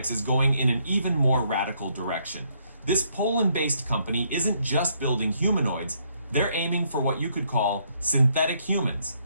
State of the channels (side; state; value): both; inverted; correlation -0.71